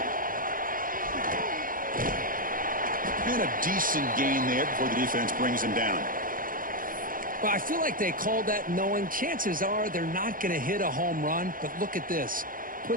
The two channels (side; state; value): left; late; 0.40 ms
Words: And a decent gain there before the defense brings him down. Well, I feel like they called that knowing chances are they're not going to hit a home run, but look at this.